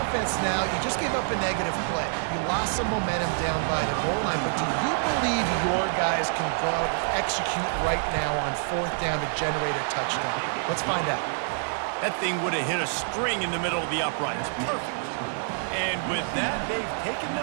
offense now. You just gave up a negative play. You lost some momentum down by the goal line, but do you believe your guys can go out and execute right now on fourth down to generate a touchdown? Let's find out. That thing would have hit a string in the middle of the uprights. Perfect. And with that, they've taken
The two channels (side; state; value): left; silent; digital silence